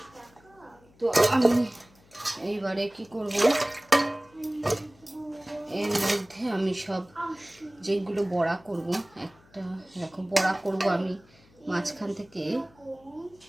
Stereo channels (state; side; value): noise; left; hum, 29 dB below the sound